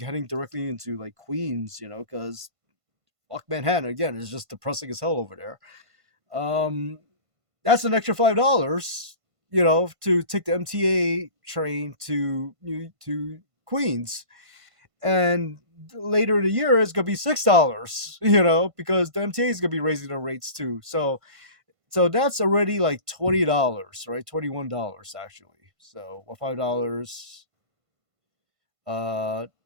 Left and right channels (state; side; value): late; left; 1.5 ms